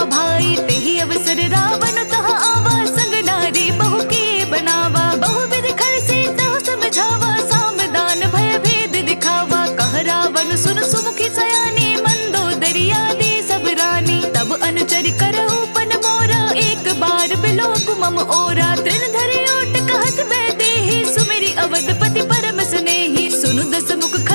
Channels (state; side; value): inverted; both; correlation -1.00